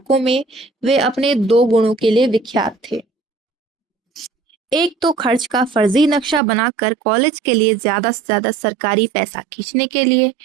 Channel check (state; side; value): drops out; left; at 6.4 s